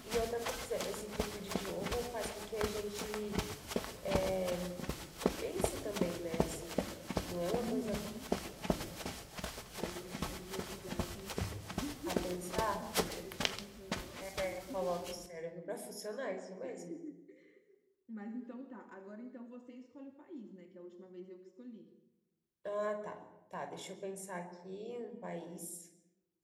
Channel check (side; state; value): both; identical; correlation 1.00